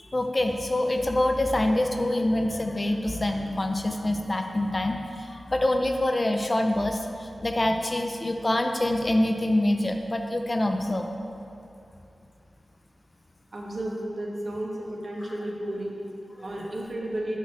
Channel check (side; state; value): both; normal; correlation 0.97